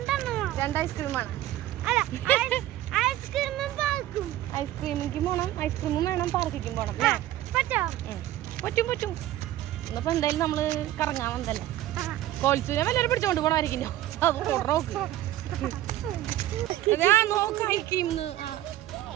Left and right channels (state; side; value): quieter; left; 14.2 dB